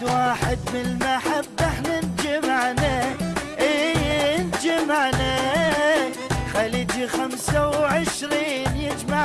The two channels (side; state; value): both; identical; correlation 1.00